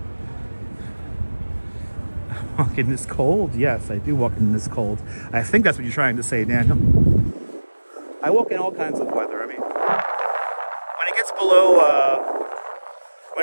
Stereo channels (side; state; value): both; inverted; correlation -1.00